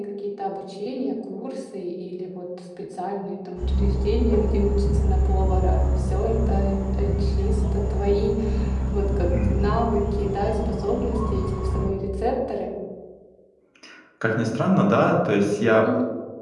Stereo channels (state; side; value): identical; both; correlation 1.00